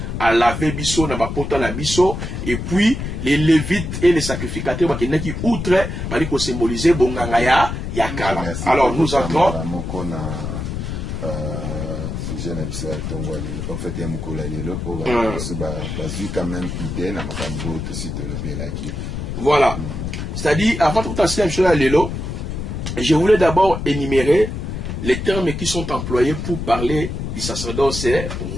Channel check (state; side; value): noise; left; rumble, 5 dB below the sound